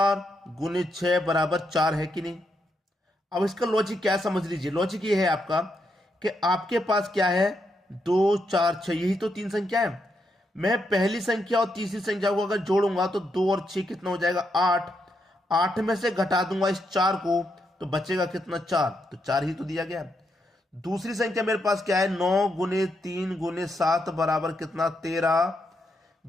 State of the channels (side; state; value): both; normal; correlation 0.80